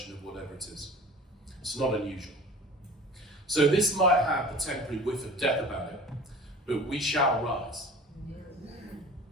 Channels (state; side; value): normal; both; correlation 0.40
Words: of whatever it is? It's not unusual. So this might have a temporary whiff of death about it, but we shall rise.